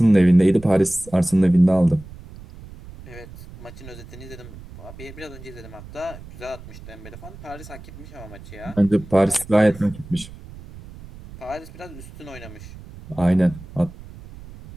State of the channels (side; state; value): right; noise; rumble, 17 dB below the sound